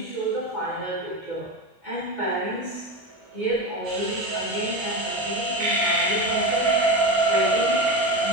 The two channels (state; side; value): normal; both; correlation 0.21